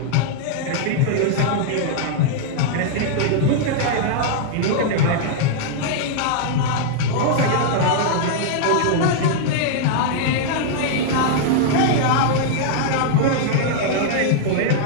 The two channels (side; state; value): both; different; correlation -0.01